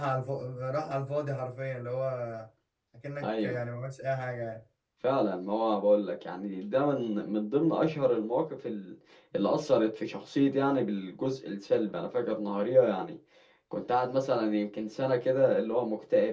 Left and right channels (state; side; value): identical; both; correlation 1.00